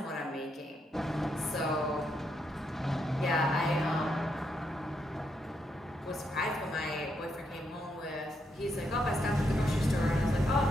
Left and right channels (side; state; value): both; normal; correlation 0.79